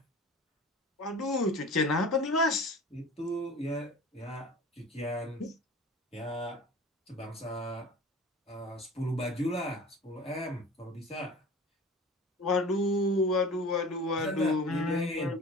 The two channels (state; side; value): normal; both; correlation 0.39